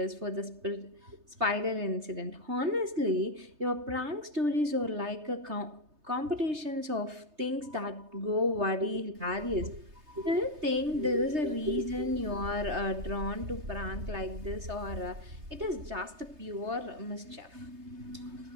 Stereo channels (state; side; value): late; left; 3.3 ms